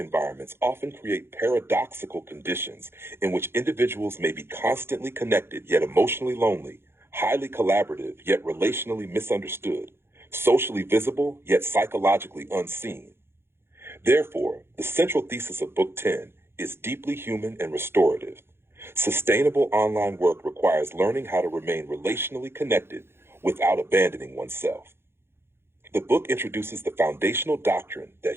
often create paradoxical conditions in which individuals may be constantly connected yet emotionally lonely, highly collaborative yet relationally misunderstood, socially visible yet psychologically unseen. Therefore, the central thesis of Book 10 is deeply human and restorative. Sustainable online work requires learning how to remain relationally connected without abandoning oneself. The book introduces the foundational doctrine that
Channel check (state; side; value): late; left; 0.11 ms